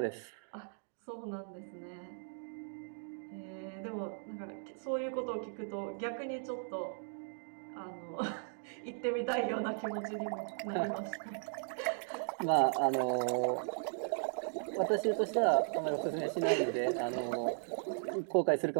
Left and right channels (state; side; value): silent; left; digital silence